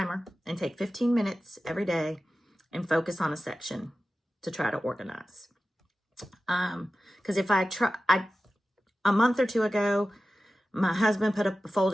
and take 15 minutes every day and focus on a section to try to organize. Because if a month or two ago, my husband put up a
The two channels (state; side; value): normal; both; correlation 0.94